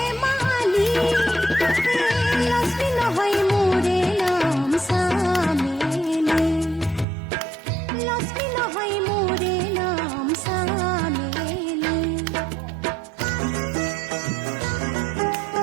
লক্ষ্মী নহয় মোৰে নাম চামেলি লক্ষ্মী নহয় মোৰে নাম চামেলি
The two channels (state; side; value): drops out; left; at 7.1 s